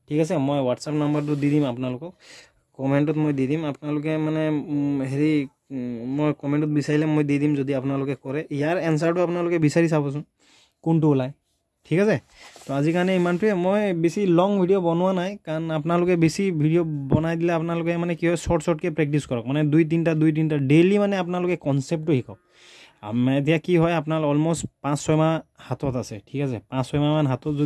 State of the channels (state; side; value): identical; both; correlation 1.00